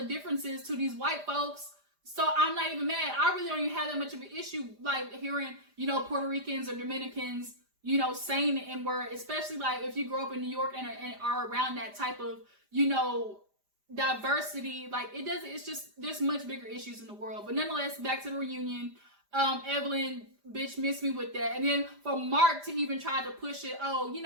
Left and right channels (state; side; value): late; left; 5.0 ms